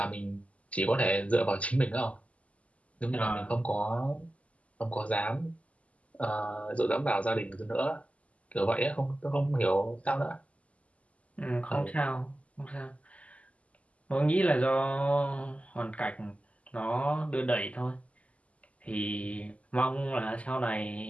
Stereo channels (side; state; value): right; late; 0.066 ms